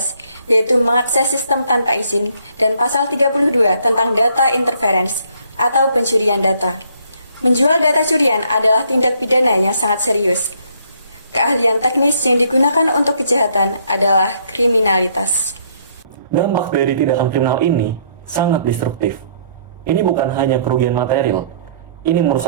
yaitu mengakses sistem tanpa izin, dan pasal 32 tentang data interference atau pencurian data. Menjual data curian adalah tindak pidana yang sangat serius. Keahlian teknis yang digunakan untuk kejahatan adalah kriminalitas. Dampak dari tindakan kriminal ini sangat destruktif. Ini bukan hanya kerugian material, ini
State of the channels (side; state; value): both; inverted; correlation -0.66